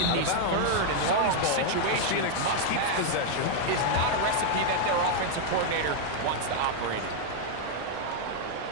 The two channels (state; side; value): different; both; correlation 0.00